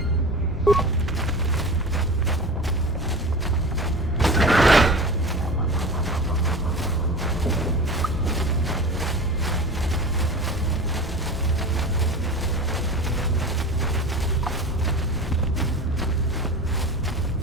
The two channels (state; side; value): normal; both; correlation 0.32